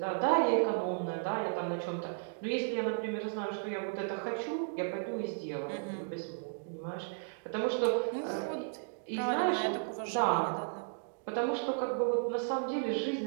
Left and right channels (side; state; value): left; silent; digital silence